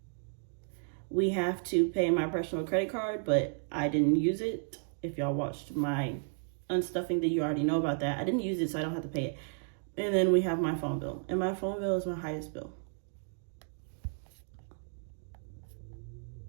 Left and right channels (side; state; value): left; silent; 56 dB below the other